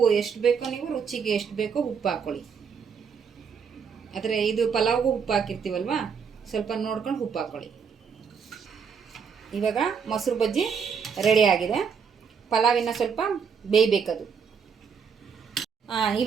ಎಷ್ಟು ಬೇಕೋ, ನೀವು ರುಚಿಗೆ ಎಷ್ಟು ಬೇಕೋ ಉಪ್ಪು ಹಾಕ್ಕೊಳ್ಳಿ. ಆದರೆ ಇದು ಪಲಾವ್ಗೂ ಉಪ್ಪು ಹಾಕಿರ್ತೀವಲ್ವ, ಸ್ವಲ್ಪ ನೋಡ್ಕೊಂಡು ಉಪ್ಪು ಹಾಕ್ಕೊಳ್ಳಿ. ಇವಾಗ ಮೊಸರು ಬಜ್ಜಿ ರೆಡಿ ಆಗಿದೆ. ಪಲಾವಿನ ಸ್ವಲ್ಪ ಬೇಯಬೇಕದು.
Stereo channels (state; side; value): quieter; left; 6.4 dB